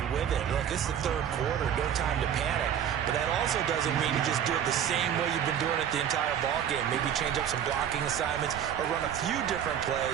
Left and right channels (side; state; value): left; quieter; 9.3 dB